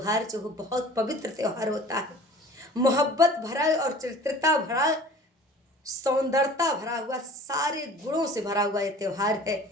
जो हो बहुत पवित्र त्यौहार होता है। मोहब्बत भरा और चरित्रता भरा, सौंदर्यता भरा हुआ, सारे गुणों से भरा हुआ ये त्यौहार है।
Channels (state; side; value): normal; both; correlation 0.45